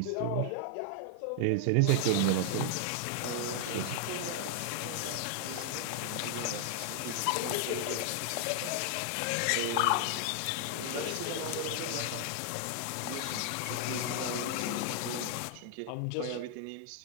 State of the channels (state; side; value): different; both; correlation 0.00